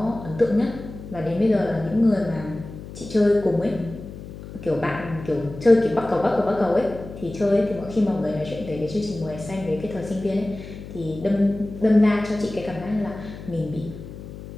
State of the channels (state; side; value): noise; left; hum, 13 dB below the sound